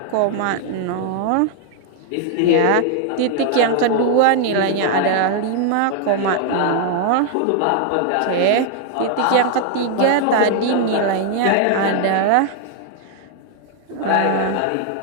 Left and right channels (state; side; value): different; both; correlation 0.00